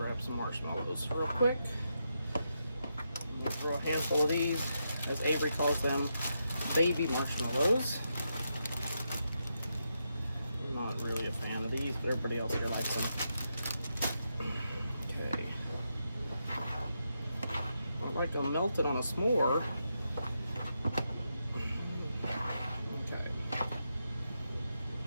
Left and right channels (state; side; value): inverted; both; correlation -0.84